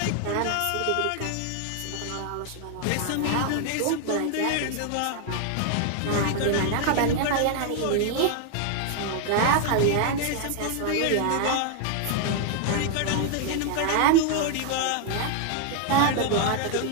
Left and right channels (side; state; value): both; different; correlation 0.00